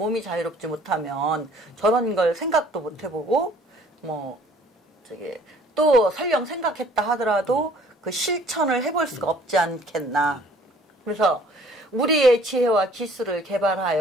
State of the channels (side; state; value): both; normal; correlation 0.56